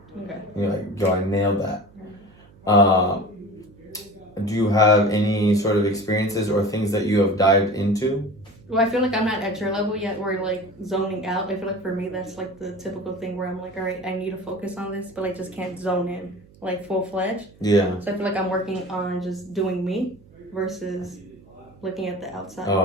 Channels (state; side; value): noise; right; hum, 26 dB below the sound